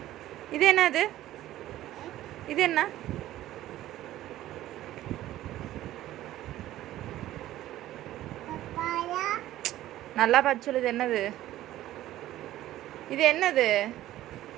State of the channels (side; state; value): left; quieter; 14.3 dB